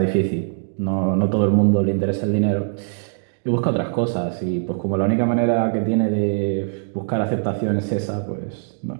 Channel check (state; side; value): silent; left; 64 dB below the other